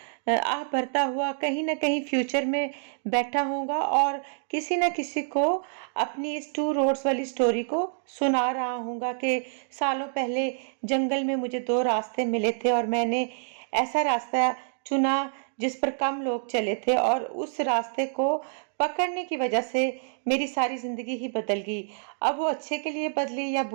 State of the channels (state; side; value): silent; left; digital silence